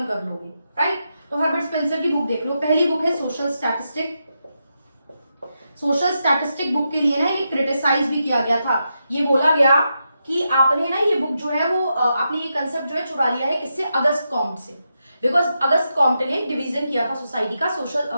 कर लोगे, राइट। तो हर्बर्ट स्पेंसर की बुक देख लो। पहली बुक है social statistic. Social statistic book के लिए ना ये क्रिटिसाइज भी किया गया था। ये बोला गया कि आपने ना ये बुक जो है वो आपने ये कंसेप्ट जो है चुरा लिया है किससे? अगस्त कॉम्ट से। बिकॉज अगस्त कॉम्ट ने डिवीजन किया था सोसाइटी का, सोशल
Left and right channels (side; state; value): both; inverted; correlation -0.86